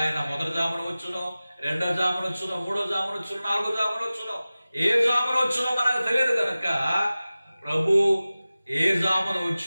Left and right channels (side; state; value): both; inverted; correlation -0.96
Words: ఆయన మొదటి జామున వచ్చునో, రెండో జామున వచ్చునో, మూడో జామున వచ్చునో, నాలుగో జామున వచ్చునో, ఏ జామున వచ్చునో మనకు తెలియదు కనుక ప్రభు ఏ జామున